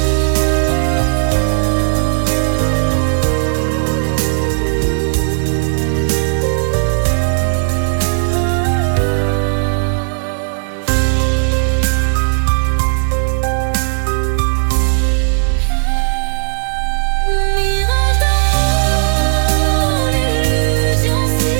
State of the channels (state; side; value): silent; left; digital silence